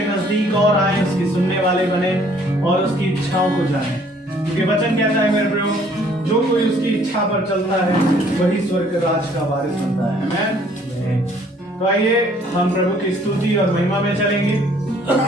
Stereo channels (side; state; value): both; normal; correlation 0.60